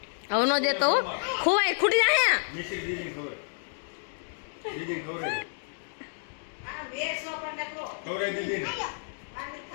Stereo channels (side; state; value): right; silent; digital silence